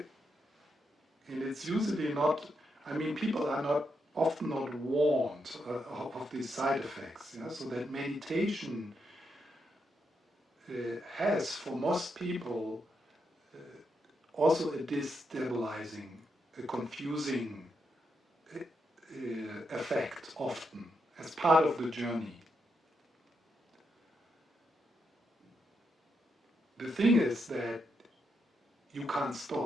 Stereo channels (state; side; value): normal; both; correlation 0.82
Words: it's usually not. I mean, people are not often not warned of these side effects. Yeah? So that meditation has, for most people, also a destabilizing, a confusing effect often as part of the journey. The thing is that you can't